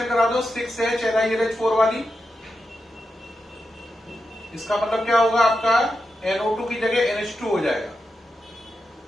करा दो 6H LiLH4 वाली। इसका मतलब क्या होगा, आपका NO2 की जगह NH2 हो जाएगा,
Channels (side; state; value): both; normal; correlation 0.88